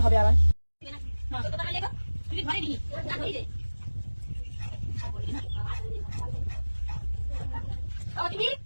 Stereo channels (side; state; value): both; inverted; correlation -1.00